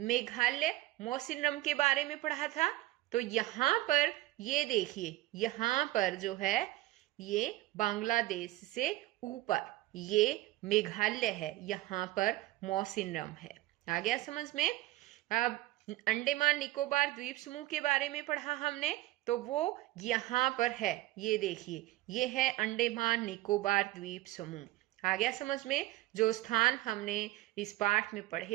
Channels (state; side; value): quieter; left; 17.5 dB